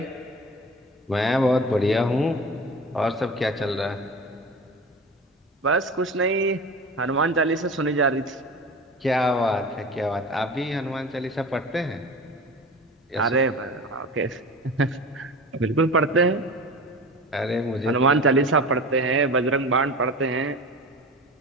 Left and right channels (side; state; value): both; normal; correlation 0.34